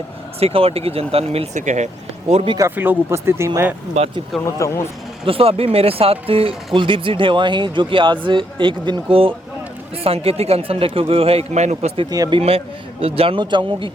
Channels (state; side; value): normal; both; correlation 0.75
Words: शेखावाटी की जनता ने मिल सके है। और भी काफ़ी लोग उपस्थित ही, मैं बातचीत करना चाहूँ। दोस्तों अभी मेरे साथ कुलदीप जी ढेवा ही, जो कि आज एक दिन को सांकेतिक अनशन रखे गए है, एक मैन उपस्थित ही। अभी मैं जानना चाहूँगा कि